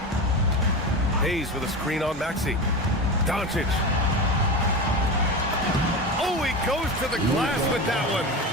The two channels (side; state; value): both; normal; correlation 0.24